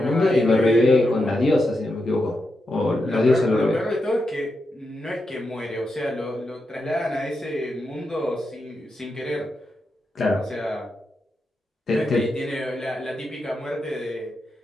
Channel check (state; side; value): normal; both; correlation 0.86